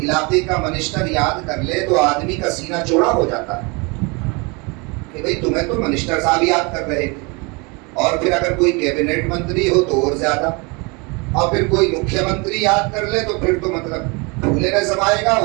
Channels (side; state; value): left; quieter; 29.1 dB